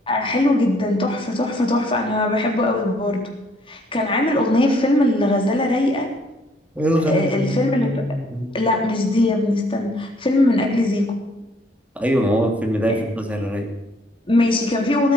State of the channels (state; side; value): normal; both; correlation 0.64